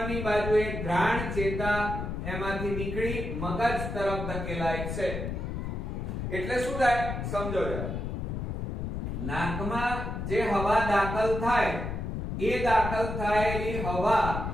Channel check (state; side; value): noise; left; rumble, 4 dB below the sound